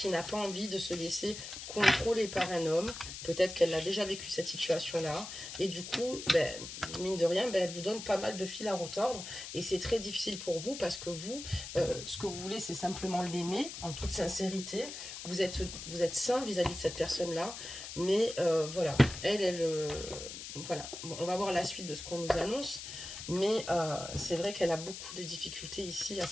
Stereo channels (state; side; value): noise; left; hiss, 9 dB below the sound